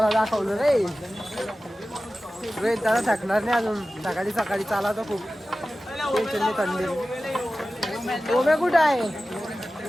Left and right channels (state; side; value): normal; both; correlation 0.95